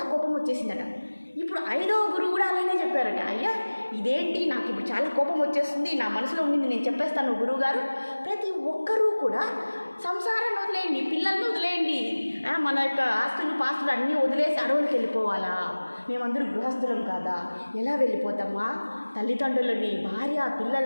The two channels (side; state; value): both; inverted; correlation -1.00